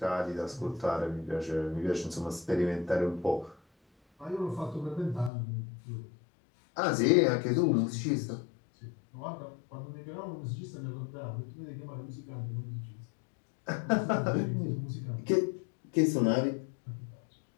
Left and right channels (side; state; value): right; drops out; at 5.3 s